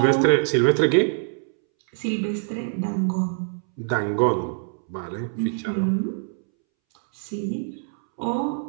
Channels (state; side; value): silent; left; 62 dB below the other